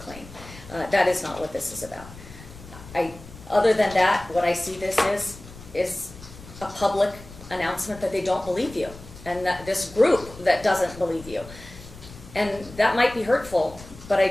That is not what this is about. Other than that, what I see this is a public announcement that they don't believe you, and that this group that doesn't believe you. And that might be hurtful, but I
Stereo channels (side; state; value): left; noise; rumble, 17 dB below the sound